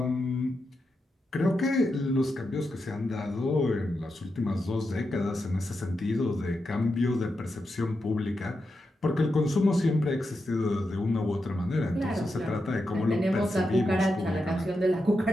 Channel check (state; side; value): normal; both; correlation 0.87